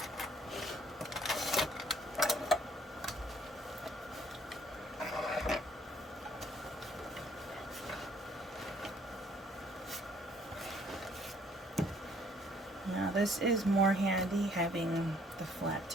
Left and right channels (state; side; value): normal; both; correlation 0.62